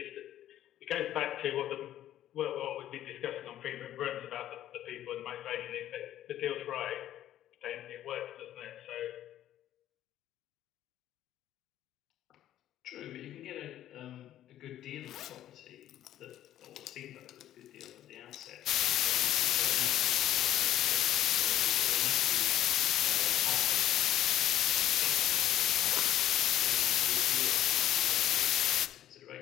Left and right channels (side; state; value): right; quieter; 12.4 dB